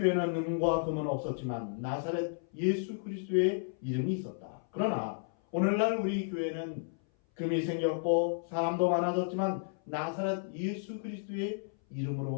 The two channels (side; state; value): right; silent; 56 dB below the other